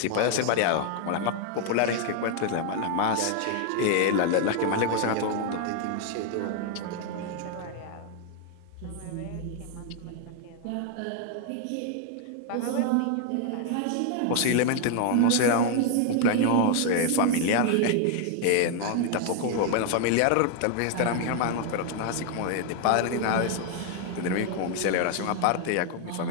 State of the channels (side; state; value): both; different; correlation 0.00